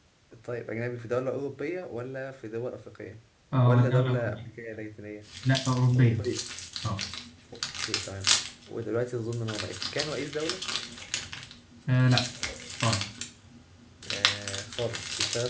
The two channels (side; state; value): both; identical; correlation 1.00